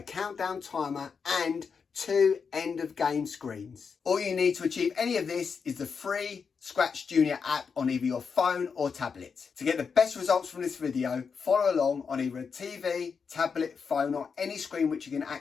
countdown timer and 2 end of game screens. All you need to achieve any of this is the free ScratchJr app on either your phone or tablet. To get the best results from this video, follow along on either a TV, tablet, phone or any screen which you can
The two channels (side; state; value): right; quieter; 5.8 dB